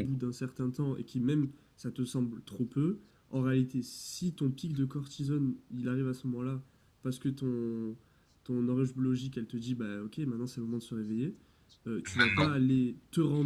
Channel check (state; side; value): identical; both; correlation 1.00